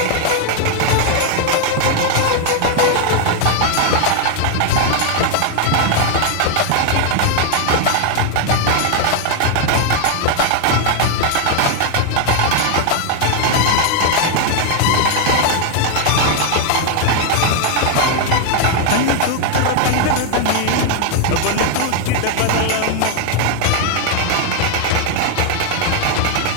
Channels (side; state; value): both; different; correlation 0.00